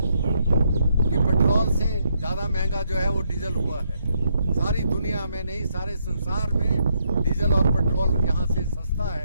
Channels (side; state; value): both; inverted; correlation -0.75